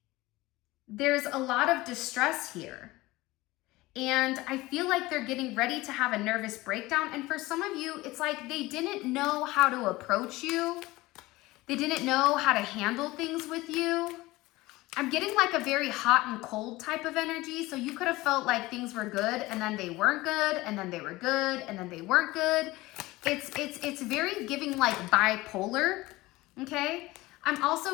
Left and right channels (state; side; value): quieter; right; 19.7 dB